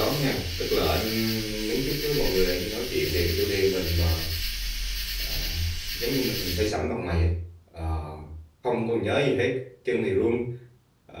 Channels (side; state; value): both; identical; correlation 1.00